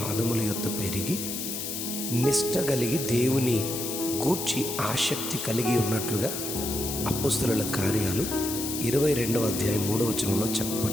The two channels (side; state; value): left; noise; hiss, 4 dB below the sound